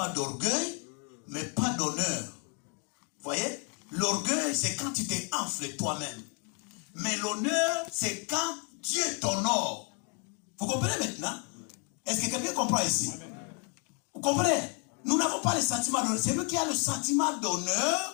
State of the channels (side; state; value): right; quieter; 37.8 dB